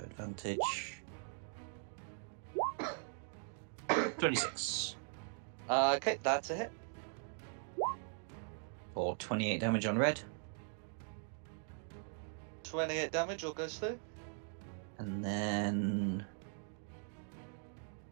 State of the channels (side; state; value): left; silent; 51 dB below the other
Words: 26. Okay, that's a hit. for 28 damage on red. 28 damage, all goes through. And then...